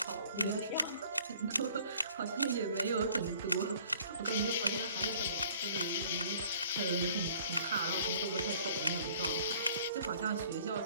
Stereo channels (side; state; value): both; inverted; correlation -0.54